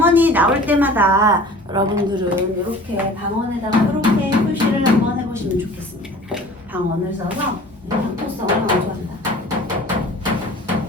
나올 때마다 여러분들은 이렇게 방언에다가 이렇게 표시를 한번 해보시면 좋겠습니다. 방언을 써서 향토성을 강조한다.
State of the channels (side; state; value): both; normal; correlation 0.44